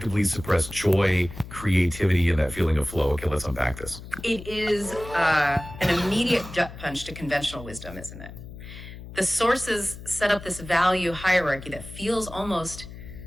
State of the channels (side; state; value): left; noise; hum, 14 dB below the sound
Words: suppress joy, creativity, and that feeling of flow. Okay, let's unpack this. It is an immediate gut punch to conventional wisdom, isn't it? The sources set up this value hierarchy that feels almost,